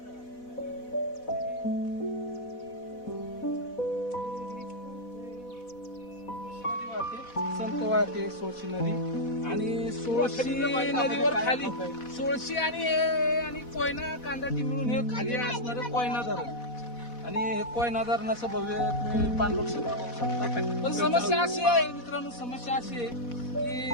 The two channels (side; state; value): right; late; 4.1 ms